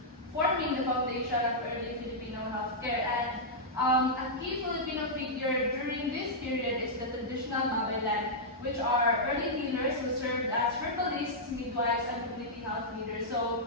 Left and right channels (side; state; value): both; normal; correlation -0.09